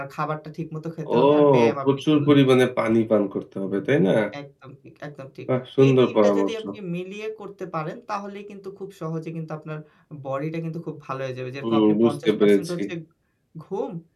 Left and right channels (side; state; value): both; identical; correlation 1.00